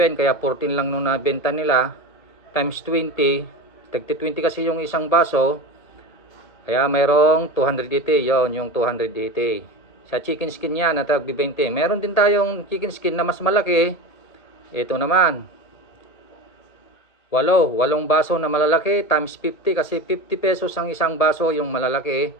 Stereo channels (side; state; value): right; late; 1.7 ms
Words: kaya 14 lang nung nabenta nila, times 20, tagti 20 kasi yung isang baso, kaya mayroong 280. Yon yung 280 sa chicken skin yan na tag 20. Meron din tayong chicken skin na mas malaki. Ito naman, 8 baso na malalaki times 50, kasi 50 pesos ang isang baso yung malalaki.